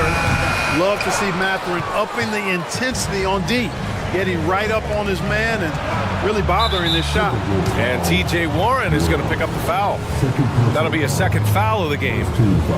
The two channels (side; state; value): both; identical; correlation 1.00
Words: Love to see Matherin upping the intensity on D, getting right up on his man and really bothering this shot. And T.J. Warren is going to pick up the foul. That'll be a second foul of the game.